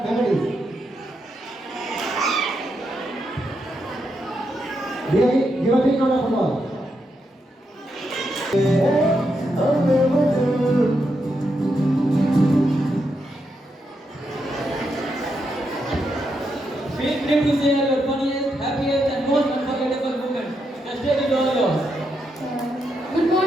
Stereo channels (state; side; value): normal; both; correlation 0.82